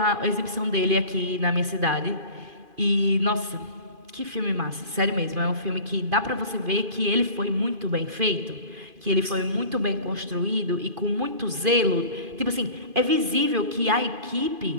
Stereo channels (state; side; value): late; left; 2.5 ms